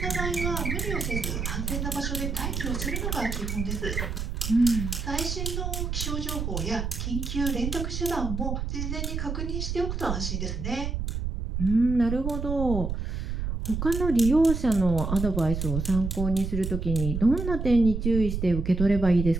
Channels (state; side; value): noise; right; rumble, 3 dB below the sound